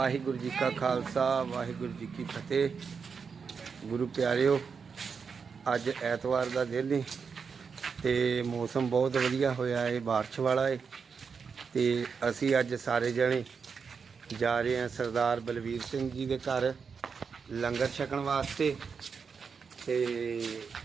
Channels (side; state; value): left; quieter; 5.8 dB